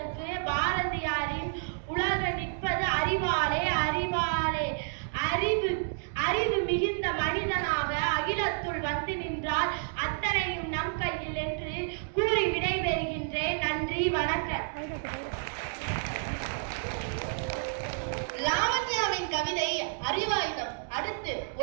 பாரதியாரின் உலக நிற்பது அறிவாலே அறிவாலே. அறிவு மிகுந்த மனிதனாக அகிலத்துள் வந்து நின்றால் அத்தனையும் நம் கையில் என்று கூறி விடைபெறுகின்றேன். நன்றி, வணக்கம். லாவண்யாவின் கவிதை அறிவாயுதம். அடுத்து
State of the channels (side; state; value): left; silent; digital silence